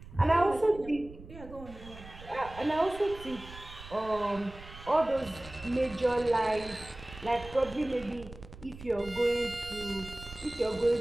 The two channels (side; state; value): right; noise; rumble, 16 dB below the sound